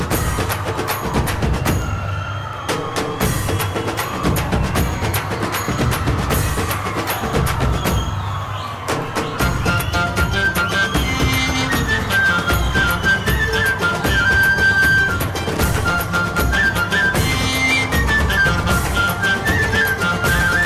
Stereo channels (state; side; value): identical; both; correlation 1.00